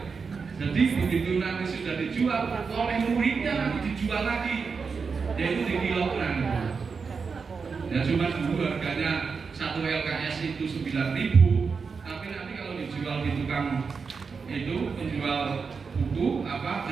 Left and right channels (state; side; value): quieter; left; 5.3 dB